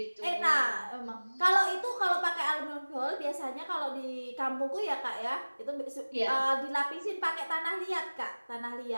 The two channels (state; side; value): inverted; both; correlation -1.00